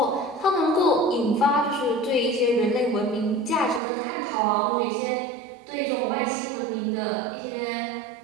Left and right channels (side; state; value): left; drops out; at 3.8 s